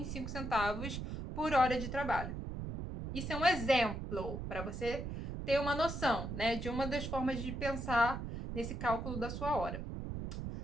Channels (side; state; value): right; noise; rumble, 5 dB below the sound